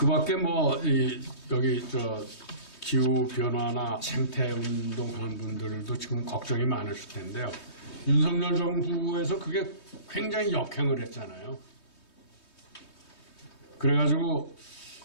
밖에 여기 기후 변화나 생태 운동하는 분들도 지금 걱정이 많으실 텐데요. 윤석열 정부에서 그게 굉장히 역행을 했잖아요. 그래가지고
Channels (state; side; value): late; right; 3.2 ms